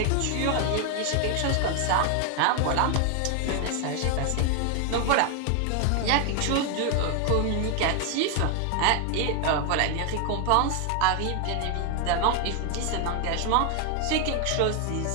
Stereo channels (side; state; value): both; different; correlation 0.01